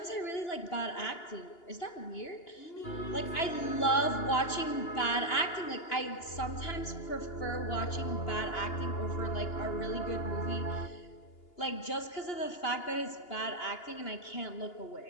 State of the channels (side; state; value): right; late; 2.8 ms